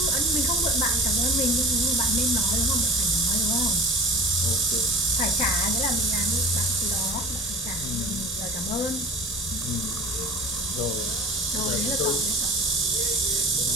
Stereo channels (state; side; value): normal; both; correlation 0.41